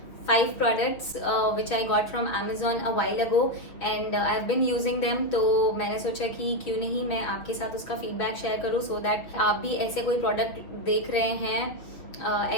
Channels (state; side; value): late; right; 6.3 ms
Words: 5 products which I got from Amazon a while ago and I've been using them. तो मैंने सोचा कि क्यों नहीं मैं आपके साथ उसका फीडबैक शेयर करूँ so that आप भी ऐसे कोई प्रोडक्ट देख रहे हैं